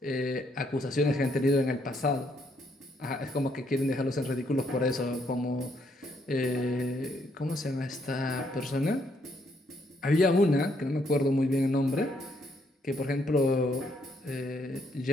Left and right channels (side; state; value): both; normal; correlation 0.73